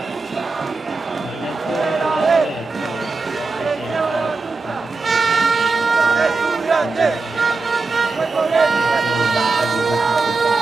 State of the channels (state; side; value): quieter; left; 3.9 dB